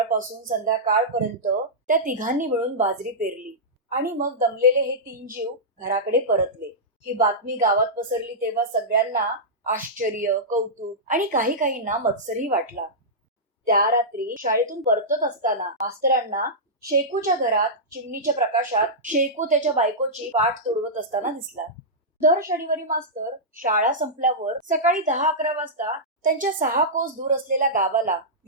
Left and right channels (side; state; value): both; normal; correlation -0.12